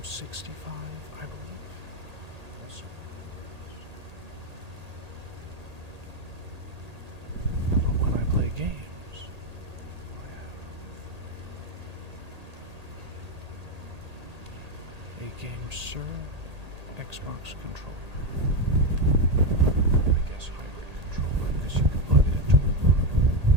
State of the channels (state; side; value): late; left; 1.8 ms